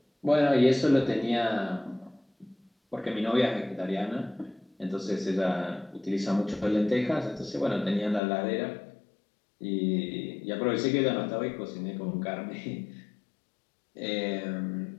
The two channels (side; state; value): right; drops out; at 8.2 s